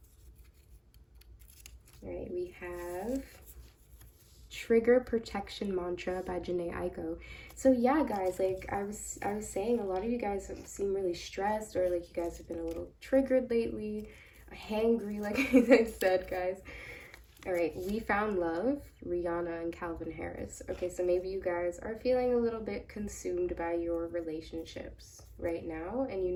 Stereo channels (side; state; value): both; identical; correlation 1.00